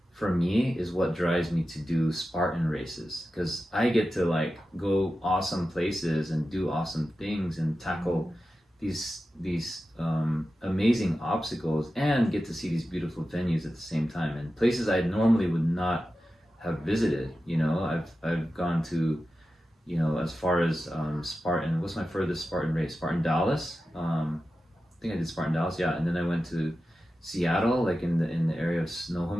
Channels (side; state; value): both; normal; correlation 0.93